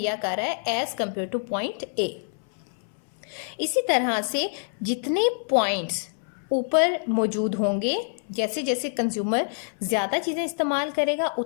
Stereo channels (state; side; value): silent; right; 60 dB below the other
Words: कर रहा है as compare two point A. इसी तरह से जितने पॉइंट्स ऊपर मौजूद होंगे, जैसे जैसे कंज्यूमर ज़्यादा चीज़ें इस्तेमाल करेगा